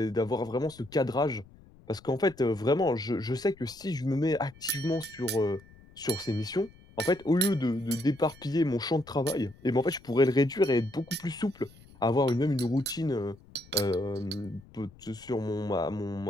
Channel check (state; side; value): noise; left; rumble, 24 dB below the sound